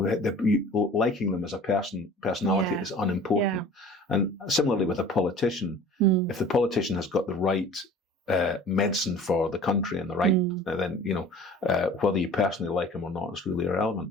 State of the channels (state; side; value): normal; both; correlation 0.45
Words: them as a personality is unimportant. And similarly with a politician, if the politician has got the right medicine for the country and the right, then whether you personally like him or not is really